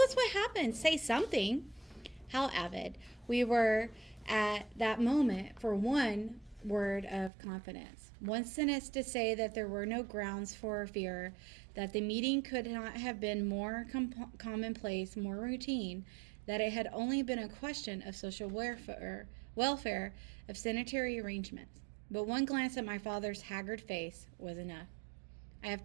what happened. Say something. How avid we were at that moment for one word of confidence. One sentence to say that there were no grounds for fear, that the meeting could not have been more commonplace, more routine, that it had only been a question of social welfare, of sanitary arrangements. But one glance at my father's haggard face was enough. I have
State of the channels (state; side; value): drops out; left; at 7.3 s